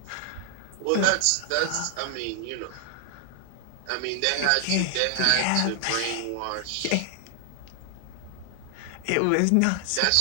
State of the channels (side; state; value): both; different; correlation 0.00